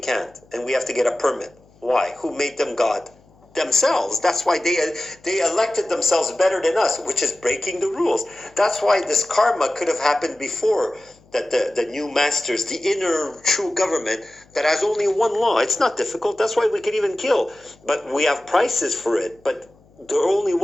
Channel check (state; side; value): noise; left; hum, 30 dB below the sound